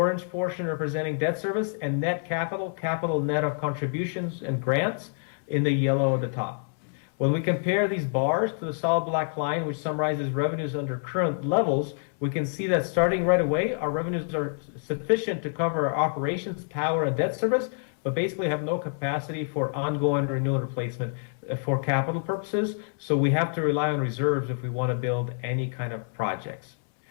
portion representing debt service and net capital net of contributions and grants in the yellow at the top. When we compare these bars to the solid black line, which summarizes revenues under current levels, we can see that starting right away, our revenues are sufficient to cover our operations, power, and debt service, but basically have no capacity for ongoing renewal and replacement for capital purposes. So we have to rely on reserves if we want to build any kind of projects.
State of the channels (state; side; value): silent; right; digital silence